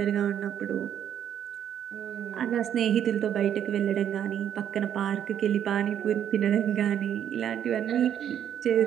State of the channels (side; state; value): left; quieter; 9.8 dB